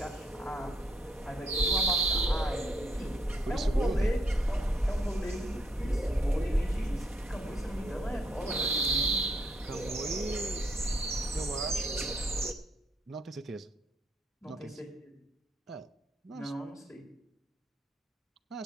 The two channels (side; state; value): both; normal; correlation 0.72